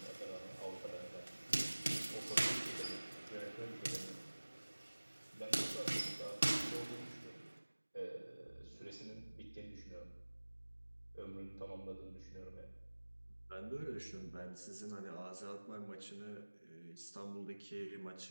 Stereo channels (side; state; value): both; inverted; correlation -1.00